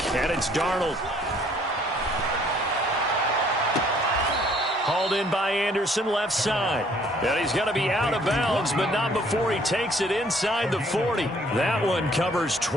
and it's Darnold. Hauled in by Anderson, left side. And he's going to be out of bounds, but not before he takes it inside the 40. That one covers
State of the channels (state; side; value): normal; both; correlation 0.61